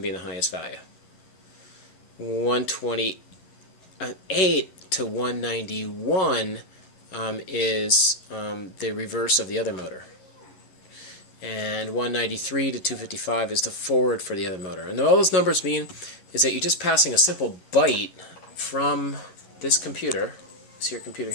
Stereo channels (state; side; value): late; right; 11 ms